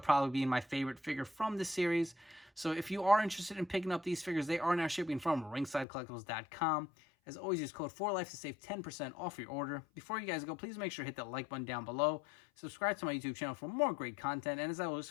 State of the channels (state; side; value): drops out; right; at 5.9 s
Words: probably being my favorite figure from this series. So if you are interested in picking up these figures, they are now shipping from ringsidecollectibles.com. As always, use code 4LIFE to save 10% off your order. Before you guys go, please make sure to hit that like button down below. Subscribe to my YouTube channel for more great content. And as always,